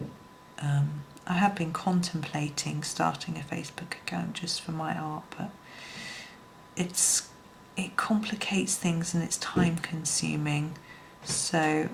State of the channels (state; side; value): identical; both; correlation 1.00